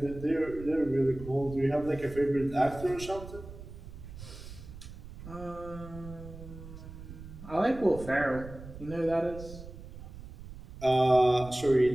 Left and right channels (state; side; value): noise; right; rumble, 14 dB below the sound